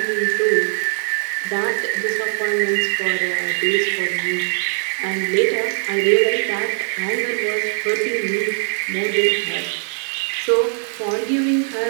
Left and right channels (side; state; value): left; silent; digital silence